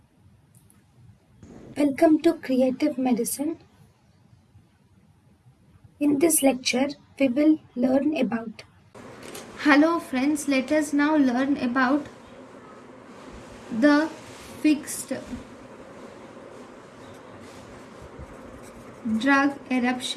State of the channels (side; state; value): both; identical; correlation 1.00